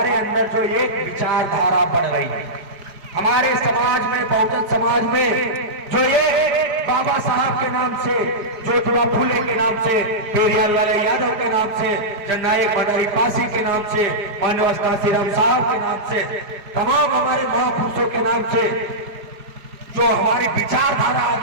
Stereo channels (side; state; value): left; late; 4.8 ms